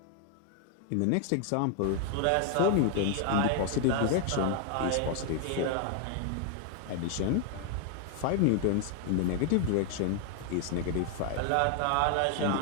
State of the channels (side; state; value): both; different; correlation 0.00